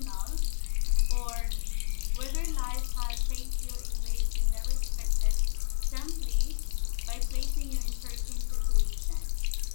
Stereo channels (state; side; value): silent; right; digital silence